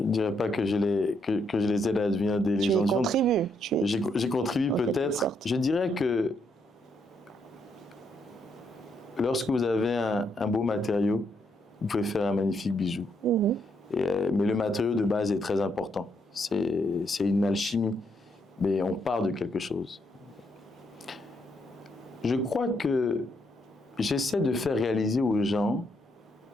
ne dirais pas que je les aide à devenir des légendes vivantes. Tu y contribues. J'ai contribué peut-être. Je dirais que lorsque vous avez un beau matériau, vous pouvez faire un magnifique bijou. Mais le matériau de base est très important. C'est une alchimie. Mais on part de quelque chose. Je crois que j'essaie de faire réaliser aux gens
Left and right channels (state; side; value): normal; both; correlation 0.76